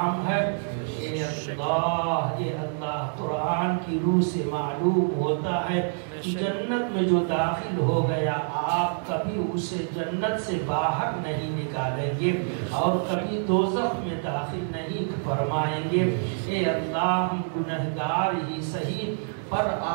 ہے اے اللہ قرآن کی روح سے معلوم ہوتا ہے کہ جنت میں جو داخل ہو گیا آپ کبھی اسے جنت سے باہر نہیں نکالیں گے اور کبھی دوزخ میں داخل نہیں فرمائیں گے اے اللہ ہم گنہگار ہی صحیح پر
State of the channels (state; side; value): silent; left; digital silence